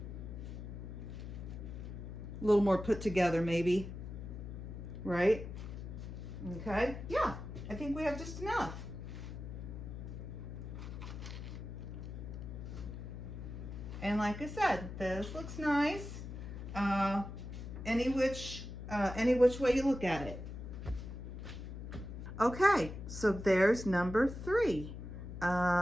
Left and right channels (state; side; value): noise; left; hum, 8 dB below the sound